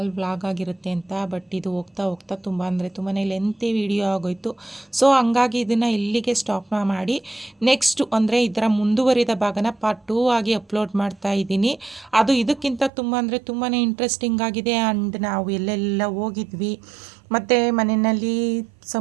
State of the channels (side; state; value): left; drops out; at 12.9 s